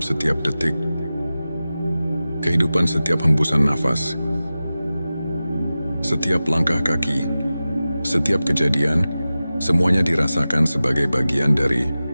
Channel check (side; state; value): both; inverted; correlation -0.95